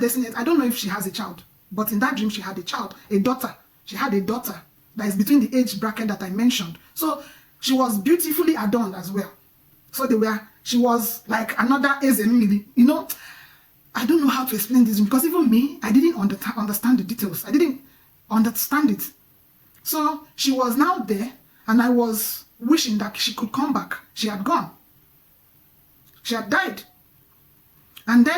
I don't know if she has a child, but in that dream she had a child, a daughter. She had a daughter that is between the age bracket that I mentioned. So she was beautifully adorned as well. So she was like another Ezemili. You know, I don't know how to explain this because even me, I didn't understand the details. I didn't understand it. So she was now there, and I was wishing that she could come back. She had gone. She had died. And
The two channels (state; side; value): identical; both; correlation 1.00